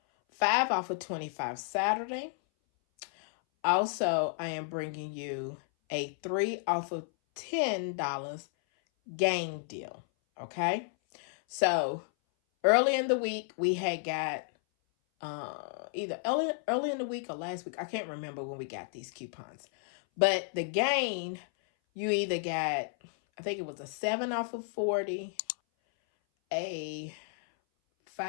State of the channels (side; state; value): right; silent; 56 dB below the other